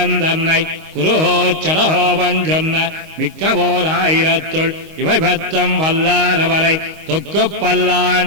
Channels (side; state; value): left; late; 25 ms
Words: தன்னை குருஹோ சடஹோபன் சொன்ன மிக்கவோர் ஆயிரத்துள் இவை பத்தம் வல்லாரவரை தொக்கு